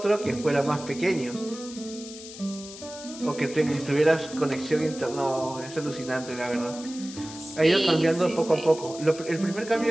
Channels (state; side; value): noise; left; hiss, 14 dB below the sound